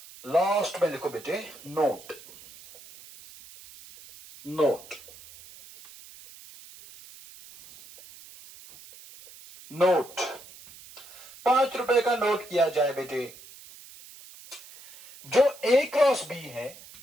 लास्ट में लिखो बेटे नोट, नोट, नोट। 5 रुपए का नोट किया जाए बेटे। जो ए क्रॉस बी है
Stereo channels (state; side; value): noise; right; hiss, 19 dB below the sound